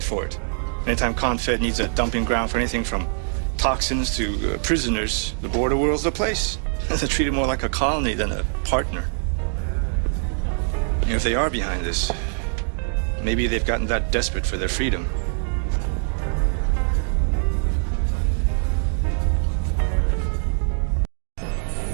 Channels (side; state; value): left; silent; 63 dB below the other